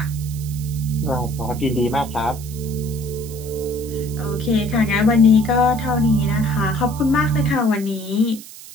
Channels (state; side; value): noise; right; hiss, 16 dB below the sound